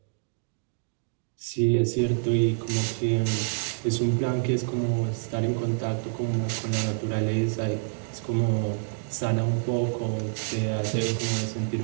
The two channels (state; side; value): silent; left; digital silence